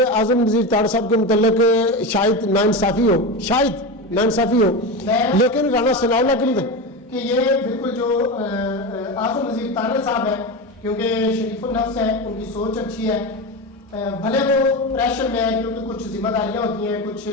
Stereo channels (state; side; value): normal; both; correlation 0.20